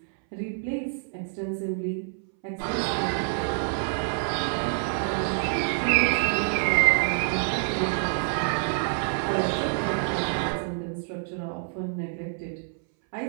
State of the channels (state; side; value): silent; left; 60 dB below the other